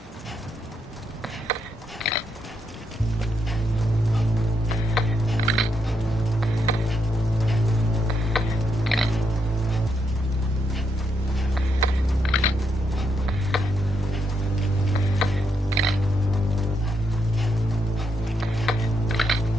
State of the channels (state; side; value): normal; both; correlation 0.80